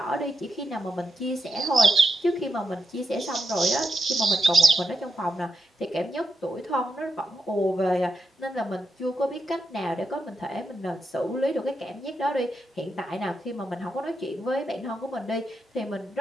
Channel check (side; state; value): both; normal; correlation 0.85